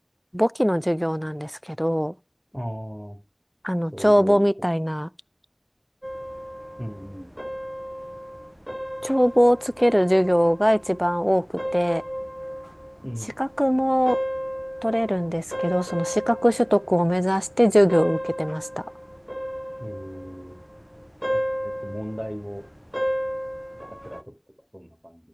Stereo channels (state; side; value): identical; both; correlation 1.00